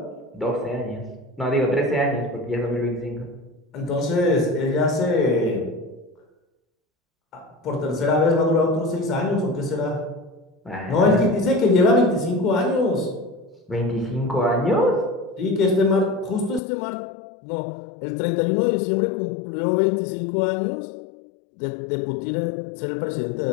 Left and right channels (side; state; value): right; drops out; at 16.6 s